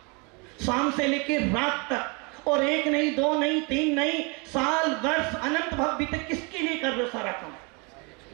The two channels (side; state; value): left; quieter; 31.0 dB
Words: शाम से लेकर रात तक, और 1 नहीं 2 नहीं 3 नहीं, साल वर्ष अनंत भव्य तक किसके लिए कर रहे हो सारा काम?